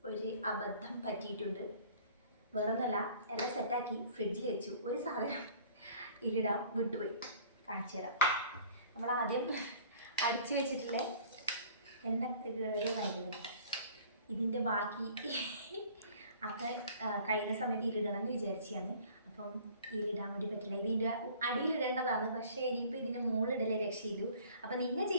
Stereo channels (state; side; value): inverted; both; correlation -0.51